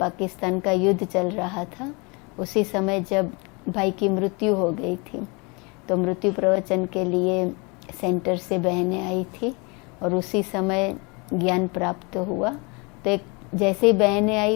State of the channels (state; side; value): quieter; right; 29.6 dB